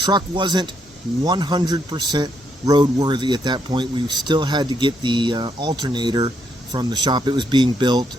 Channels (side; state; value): both; normal; correlation 0.76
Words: wasn't 100% roadworthy at that point. We still had to get the alternator from the shop. It was being built.